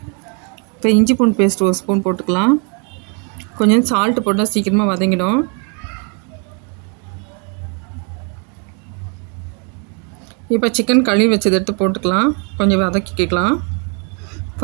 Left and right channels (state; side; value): quieter; left; 35.3 dB